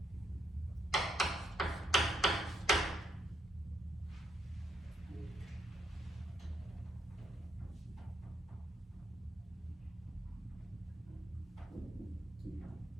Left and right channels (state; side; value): normal; both; correlation 0.76